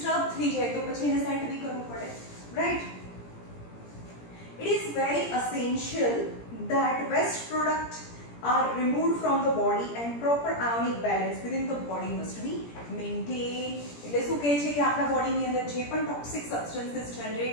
થઈ જાય તો પછી એને સેટ બી કરવું પડે, right? It is very essential that waste products are removed from the body and proper ionic balance within the body must be maintained. એટલે શું કહે છે કે આપણા બોડીની અંદર જે પણ toxic substances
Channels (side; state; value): right; late; 17 ms